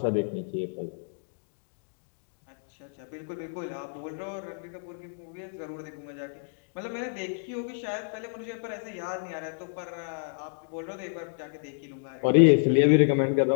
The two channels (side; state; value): right; silent; digital silence